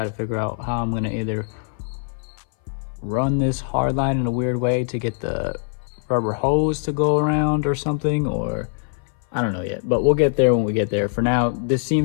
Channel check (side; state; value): right; silent; 60 dB below the other